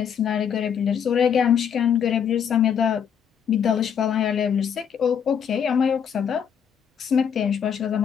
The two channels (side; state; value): right; quieter; 7.9 dB